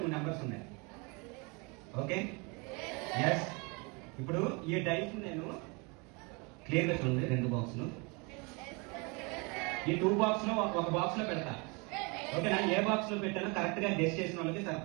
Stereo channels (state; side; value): quieter; left; 30.0 dB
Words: నెంబర్స్ ఉన్నాయి. Okay, yes. ఇప్పుడు ఈ డైస్ నేను క్లియర్గా చూడండి, 2 బాక్సులు. ఈ 2 బాక్స్ లో ఒక బాక్స్ లో పెడతా. ఓకేనా? ఏ బాక్స్ లో పెట్టానో కరెక్ట్ గా గెస్ చేసిన వాళ్ళకి